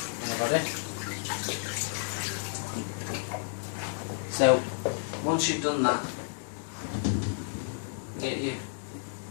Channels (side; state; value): right; silent; 57 dB below the other